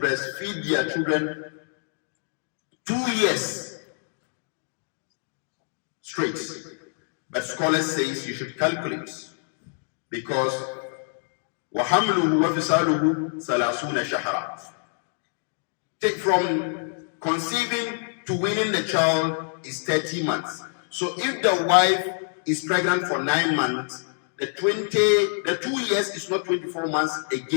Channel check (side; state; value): right; silent; 61 dB below the other